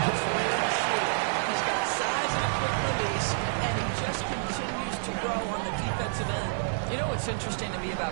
He's got size and a quick release, and he just continues to grow on the defensive end. You know what's interesting to me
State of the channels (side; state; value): left; silent; 56 dB below the other